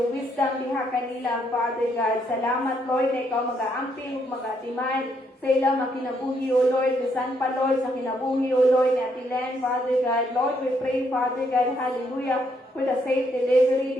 wisdom diha kanila, Father God. Salamat, Lord, na ikaw mag-aamping, mag-atiman sa ilang mga kinabuhi, O Lord, bisan pa, Lord, sa kinabuhi, O Lord, ni Ate Len, Father God. Lord, we pray, Father God, hallelujah, for the safe delivery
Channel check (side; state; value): both; normal; correlation 0.73